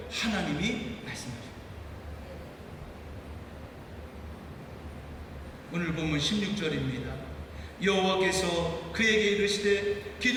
하나님이 말씀하십니다. 오늘 보면 16절입니다. 여호와께서 그에게 이르시되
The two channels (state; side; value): identical; both; correlation 1.00